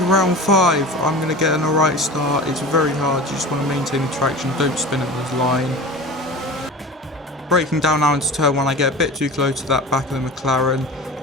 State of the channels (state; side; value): normal; both; correlation 0.34